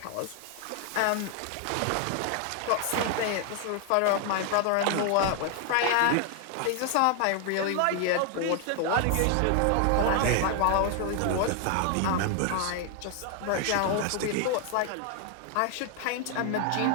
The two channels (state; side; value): different; both; correlation 0.00